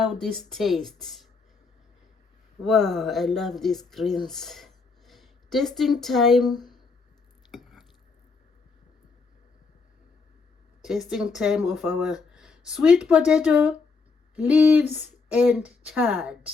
this tastes. Wow, I love these greens. Tasting time. Tasting time of our sweet potato leaves and chard.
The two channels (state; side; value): quieter; right; 4.4 dB